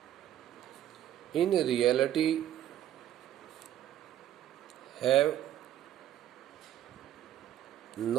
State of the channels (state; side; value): quieter; left; 11.8 dB